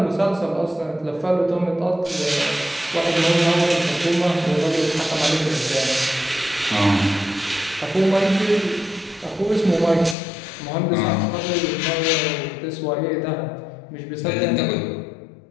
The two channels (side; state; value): right; drops out; at 10.2 s